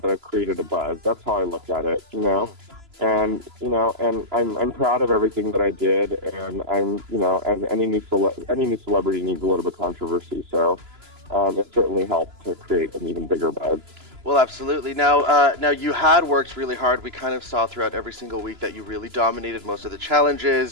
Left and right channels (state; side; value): late; left; 3.0 ms